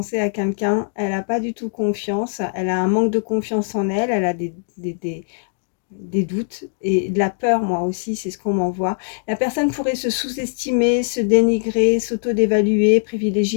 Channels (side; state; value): right; silent; 65 dB below the other